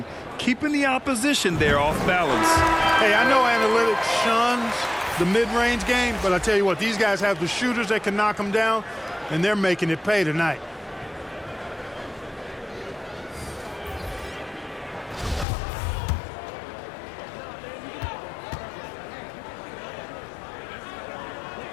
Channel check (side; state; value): right; drops out; at 15.5 s